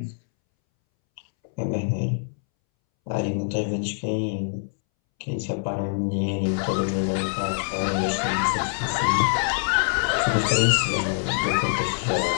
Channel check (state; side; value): silent; right; 62 dB below the other